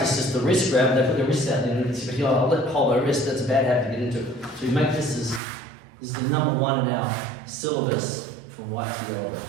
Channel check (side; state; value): left; drops out; at 5.4 s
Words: just the wrist grab. They put their wrist out there and say, "Oh, I'll let hold my wrist." That's a bad habit to get into. So you make this is the number one in our syllabus from white to yellow.